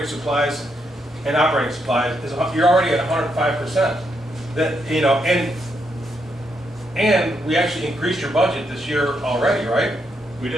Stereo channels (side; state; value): both; normal; correlation 0.79